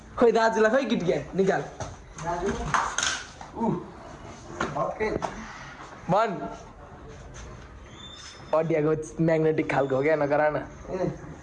खोइ दाजुलाई खोइ किटक्याट निकाल भन। अडियाको म्याग्नेटिक खालको हो क्या, नगरा न।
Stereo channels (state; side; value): identical; both; correlation 1.00